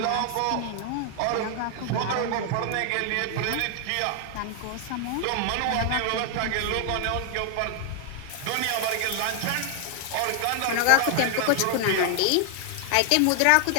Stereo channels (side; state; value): both; different; correlation 0.00